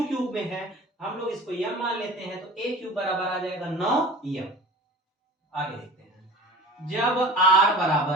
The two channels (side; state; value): both; normal; correlation 0.39